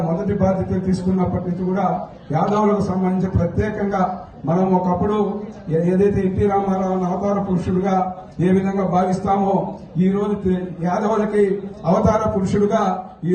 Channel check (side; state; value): both; identical; correlation 1.00